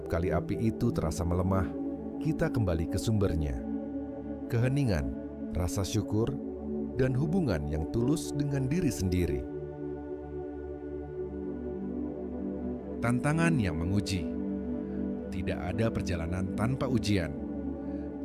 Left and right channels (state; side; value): identical; both; correlation 1.00